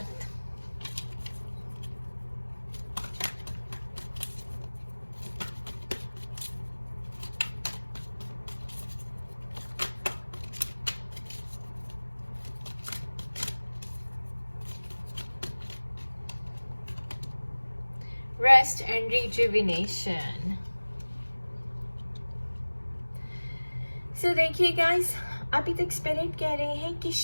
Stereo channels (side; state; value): both; inverted; correlation -1.00